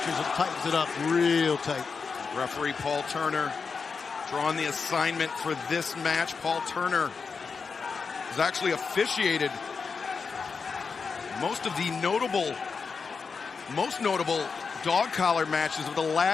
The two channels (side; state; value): right; quieter; 5.2 dB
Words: and tightens it up real tight. Referee Paul Turner drawing the assignment for this match. Paul Turner has actually officiated most of the most notable dog collar matches of the